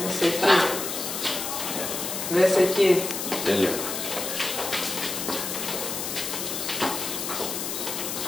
Δες εκεί. Δες εκεί. Τέλειο.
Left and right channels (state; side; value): noise; left; hiss, 4 dB below the sound